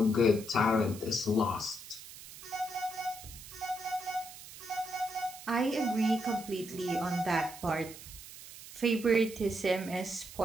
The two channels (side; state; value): right; noise; hiss, 15 dB below the sound